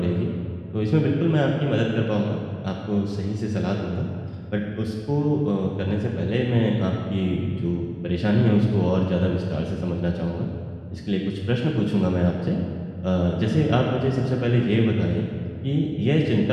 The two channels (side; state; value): both; identical; correlation 1.00